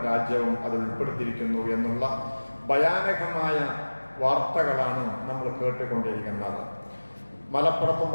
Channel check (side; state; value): both; inverted; correlation -1.00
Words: രാജ്യവും അത് ഉൾപ്പെടുത്തിയിരിക്കുന്നു എന്നുള്ള ഭയാനകമായ വാർത്തകളാണ് നമ്മൾ കേട്ടുകൊണ്ടിരിക്കുന്നത്. മലപ്പുറത്തും